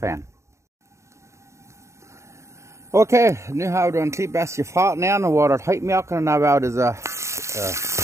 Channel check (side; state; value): left; late; 0.14 ms